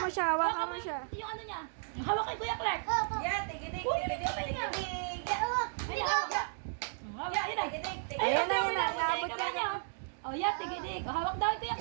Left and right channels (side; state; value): left; silent; digital silence